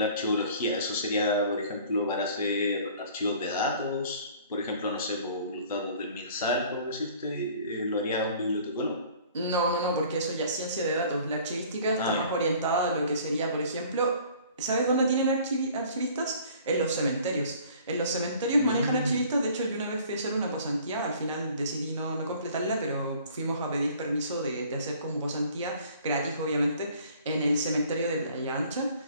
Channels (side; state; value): both; inverted; correlation -0.52